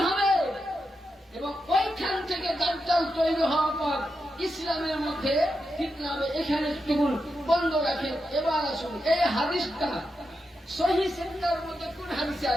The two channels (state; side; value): normal; both; correlation 0.87